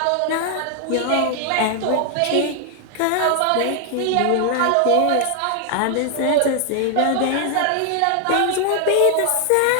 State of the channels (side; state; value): both; different; correlation 0.00